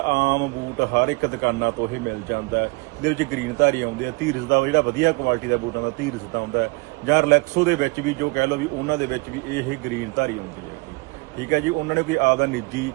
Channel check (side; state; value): left; quieter; 27.8 dB